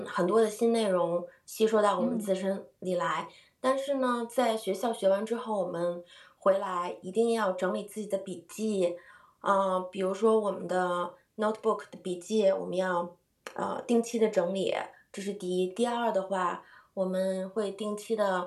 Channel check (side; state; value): both; identical; correlation 1.00